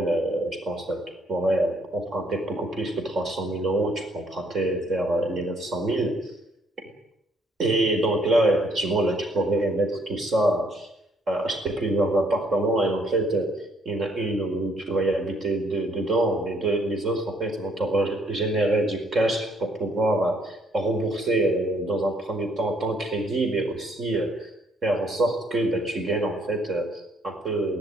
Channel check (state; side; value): normal; both; correlation 0.67